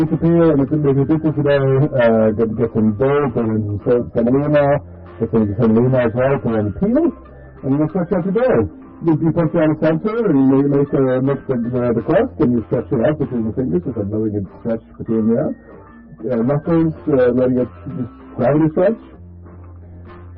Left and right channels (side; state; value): both; identical; correlation 1.00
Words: and if you did this today, get some gold, put in semolina, get some semolina as well, put in peel, and you stretch out your dough. You put it on the center, and you make the crust, and you stretch it out between the fingers, just letting it stretch between there. Knuckles, letting it just gravity stretch.